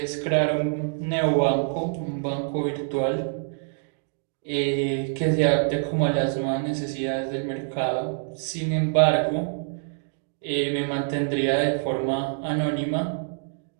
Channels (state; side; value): silent; left; digital silence